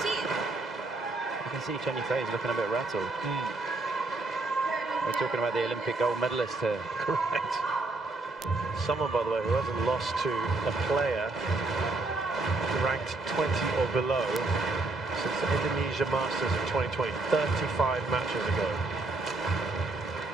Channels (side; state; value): left; quieter; 3.2 dB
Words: You can see Chen Yu Fei is looking a bit rattled. We're talking about the Olympic gold medalist here. Correct. Someone, by the way, who hasn't lost to a player ranked 20 or below since the Indonesia Masters in 2020, 35 matches ago.